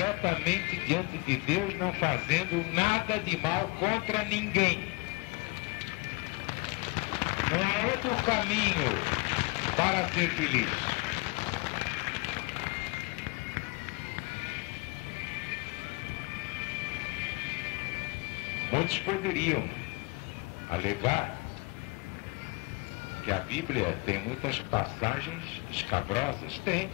diante de Deus, não fazendo nada de mal contra ninguém. Não há outro caminho para ser feliz. Muitos poderiam alegar que a Bíblia tem muitas passagens escabrosas. Tem.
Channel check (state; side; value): quieter; right; 27.1 dB